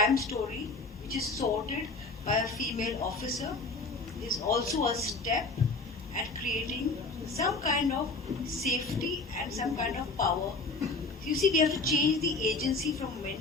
story which is sorted by a female officer is also a step at creating some kind of safety and some kind of power. You see, we have to change the agency from men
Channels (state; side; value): quieter; right; 3.6 dB